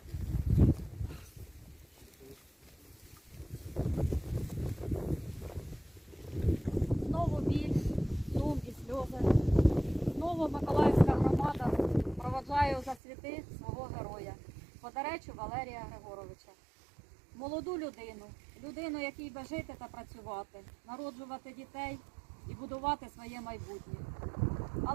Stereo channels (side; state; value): left; drops out; at 13.0 s